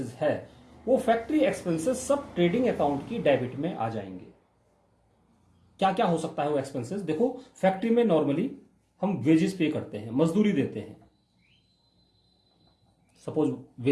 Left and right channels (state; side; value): identical; both; correlation 1.00